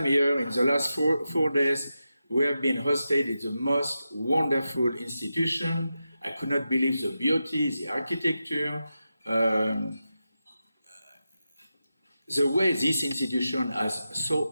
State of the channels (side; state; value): both; inverted; correlation -0.90